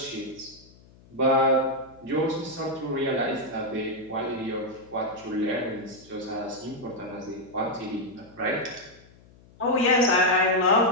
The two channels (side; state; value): left; noise; hum, 26 dB below the sound